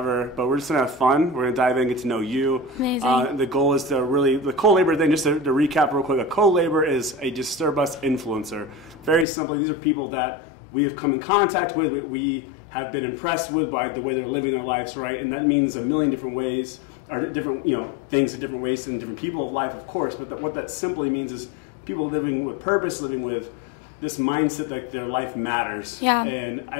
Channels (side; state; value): right; drops out; at 9.2 s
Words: but we're just going to have fun. We're going to dive in, get to know you. Amazing. The goal is to really, the co-labor thing, just to recap real quick, a co-labor is a Disturb Us influencer. Very simply, these are people that we have come in contact with, we have been impressed with by the way they're living their lives, right? And that means a million different ways, or different, things in different ways and different people of life, of course. But what that simply means is people living with purpose, living with this mindset that their life matters. Yeah. And